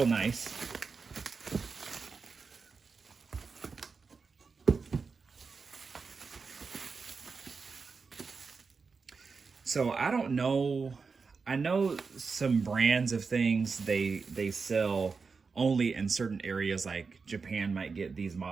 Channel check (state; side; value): quieter; left; 4.9 dB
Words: nice. So I don't know. I know some brands of things they sell only in certain areas, like Japan might get these